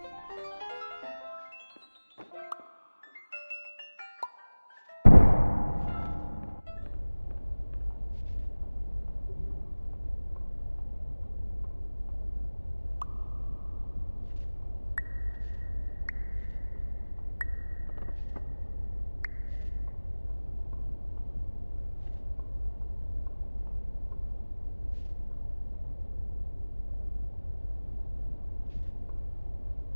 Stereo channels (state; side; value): inverted; both; correlation -1.00